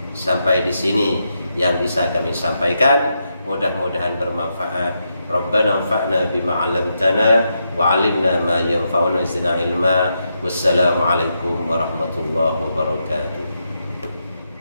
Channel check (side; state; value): both; inverted; correlation -0.83